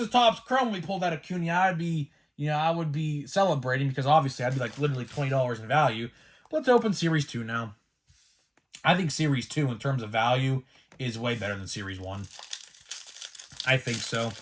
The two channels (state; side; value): identical; both; correlation 1.00